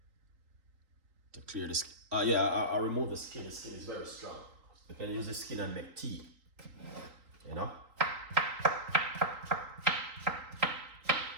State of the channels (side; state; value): left; late; 3.8 ms